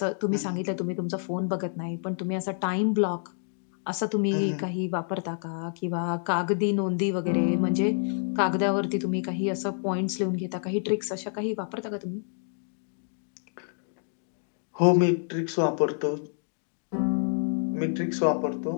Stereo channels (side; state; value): right; silent; digital silence